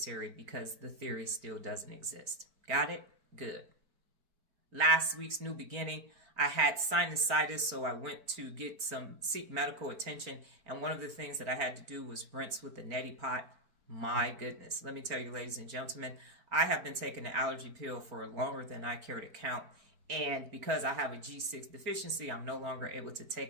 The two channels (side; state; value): left; late; 4.3 ms